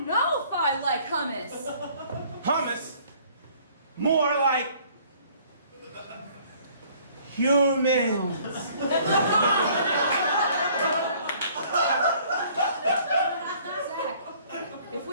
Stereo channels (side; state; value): both; inverted; correlation -0.57